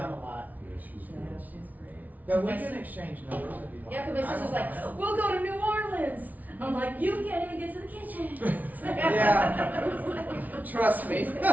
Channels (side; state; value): left; late; 0.076 ms